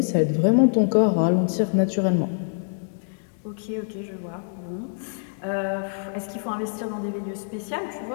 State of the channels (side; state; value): right; silent; digital silence